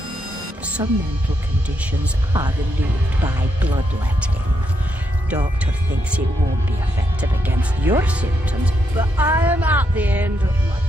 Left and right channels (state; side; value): normal; both; correlation 0.79